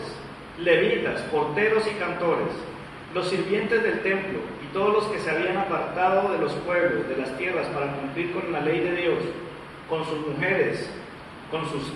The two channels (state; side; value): identical; both; correlation 1.00